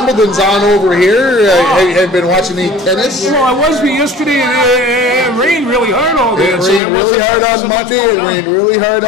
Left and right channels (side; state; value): right; drops out; at 6.8 s